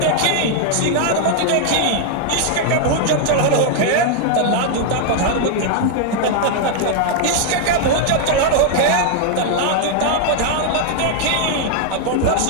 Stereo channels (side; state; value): both; different; correlation 0.00